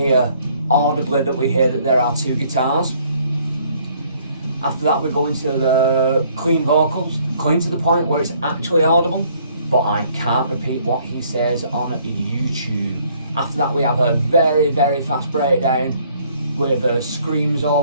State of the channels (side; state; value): both; inverted; correlation -0.63